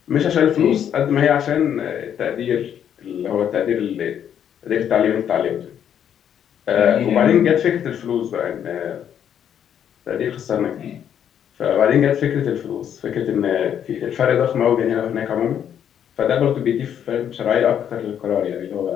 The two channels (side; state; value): right; quieter; 9.2 dB